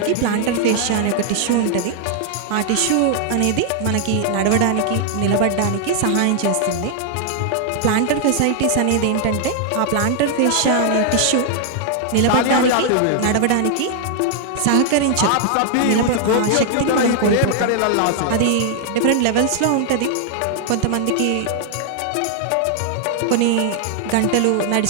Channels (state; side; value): different; both; correlation 0.00